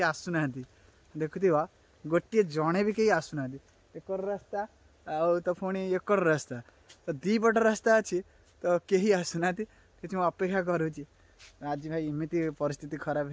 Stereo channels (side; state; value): both; identical; correlation 1.00